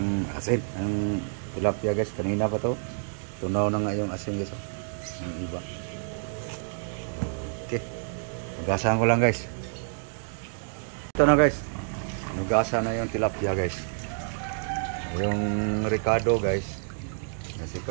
tilapia guys. Kanina pa to. Tunaw na nga yung asin guys oh. Ang iba. Okay. Hugasan ko lang guys. Ito na guys. Hugasan na yung tilapia guys. Yung Ricardo guys.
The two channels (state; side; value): silent; left; digital silence